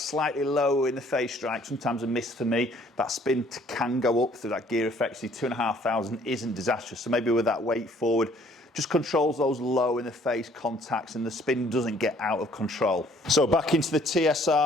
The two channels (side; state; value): both; normal; correlation 0.60